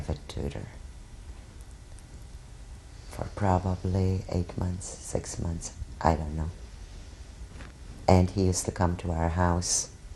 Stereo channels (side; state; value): both; identical; correlation 1.00